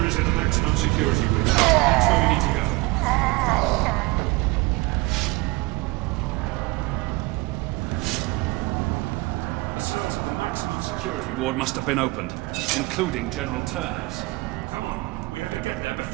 is in the maximum security wing. That's where we need to go. The cells of the maximum security ward must have been opened, including General Turner's. Come on, we have to get there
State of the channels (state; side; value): quieter; left; 23.2 dB